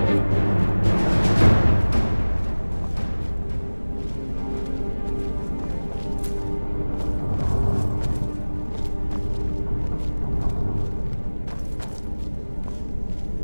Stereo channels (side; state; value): both; inverted; correlation -1.00